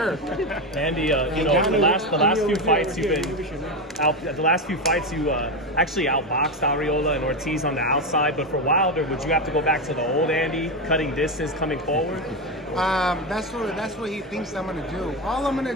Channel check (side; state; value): both; normal; correlation 0.13